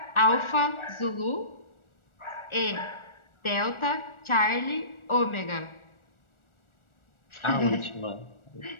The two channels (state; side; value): late; right; 1.4 ms